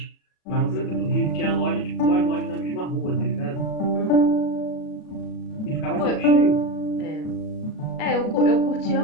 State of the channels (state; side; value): late; right; 37 ms